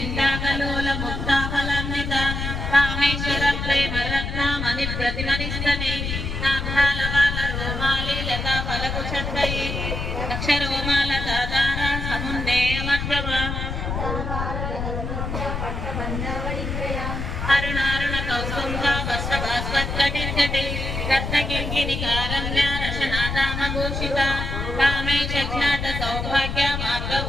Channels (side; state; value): left; noise; rumble, 3 dB below the sound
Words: Kameshwar प्रेमरत्नामणिप्रतिमनिस्तने नाभालवालरोमाले Lata फलकुशद्वये अक्षरोमालदादारा समुन्नेयमग्रम अरुणारुण कौस्तुम्भा वस्त्रभास्वत्कटिर्कटे रत्नकिङ्किणिकारम्या रशनादामभूषिता कामेशज्ञात Saubhagya